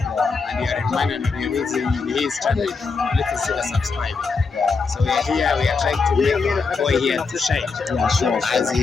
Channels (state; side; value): quieter; right; 4.6 dB